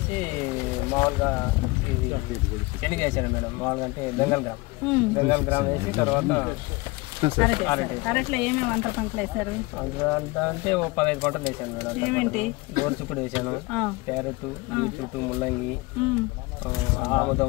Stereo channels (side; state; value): right; quieter; 23.0 dB